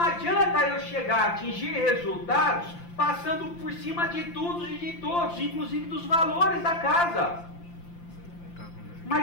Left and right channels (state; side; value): late; right; 5.8 ms